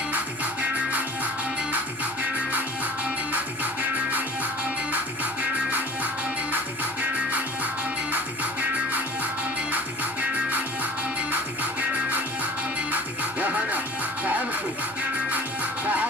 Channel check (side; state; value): right; noise; rumble, 28 dB below the sound